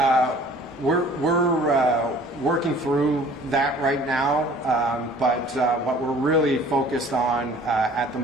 we're working through that right now, but what we're really focused on at the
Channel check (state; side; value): normal; both; correlation 0.51